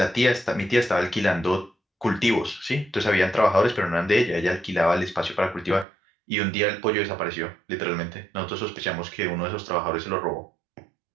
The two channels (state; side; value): drops out; left; at 5.9 s